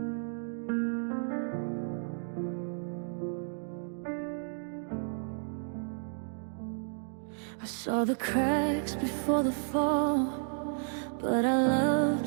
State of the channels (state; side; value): silent; left; digital silence